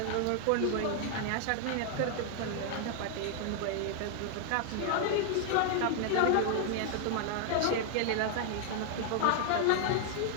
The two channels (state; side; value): different; both; correlation 0.00